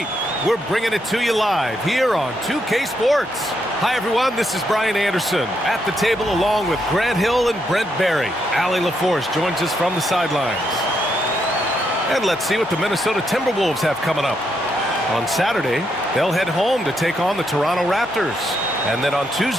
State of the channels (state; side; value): noise; right; hum, 26 dB below the sound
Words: We're bringing it to you live here on 2K Sports. Hi, everyone. This is Brian Anderson at the table along with Grant Hill and Brent Barry. Allie LaForce joins us from the sidelines. And let's see what the Minnesota Timberwolves have coming up. On Saturday, they'll head home to take on the Toronto Raptors. And then on